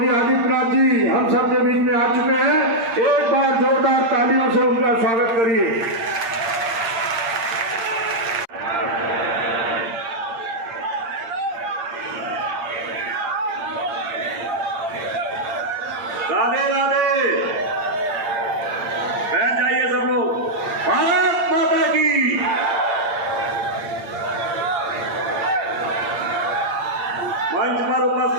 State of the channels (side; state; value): left; late; 8.8 ms